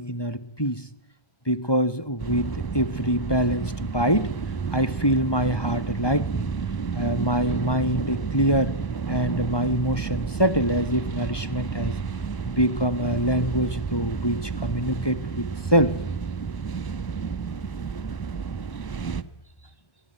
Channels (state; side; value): late; right; 1.2 ms